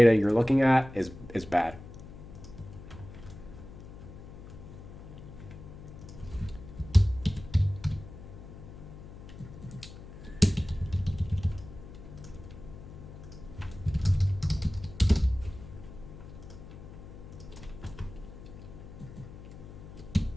you're looking at is bad.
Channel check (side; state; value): left; noise; hum, 14 dB below the sound